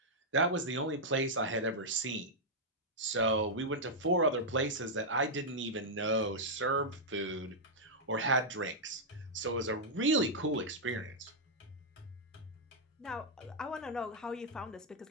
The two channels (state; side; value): normal; both; correlation -0.06